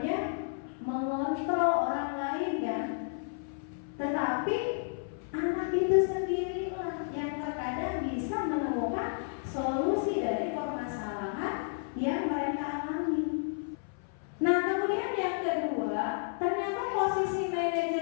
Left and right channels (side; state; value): right; silent; 57 dB below the other